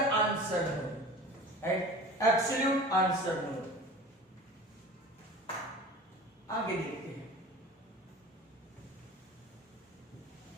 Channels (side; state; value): both; normal; correlation 0.39